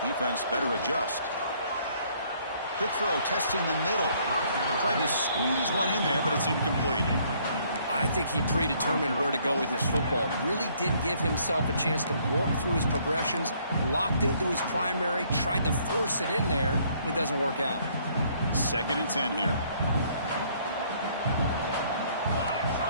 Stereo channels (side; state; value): both; inverted; correlation -0.64